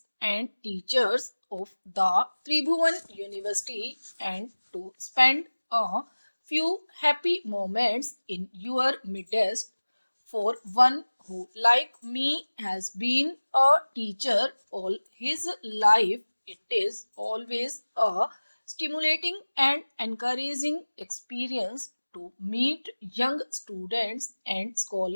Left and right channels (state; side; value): inverted; both; correlation -1.00